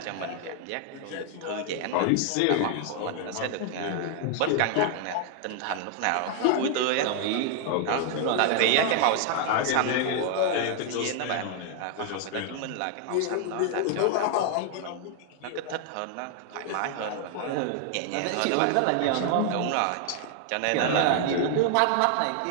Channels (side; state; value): both; different; correlation 0.00